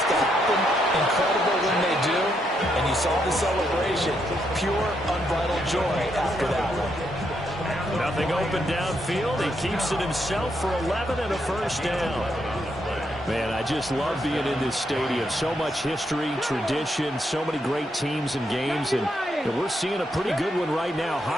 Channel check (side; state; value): both; normal; correlation 0.78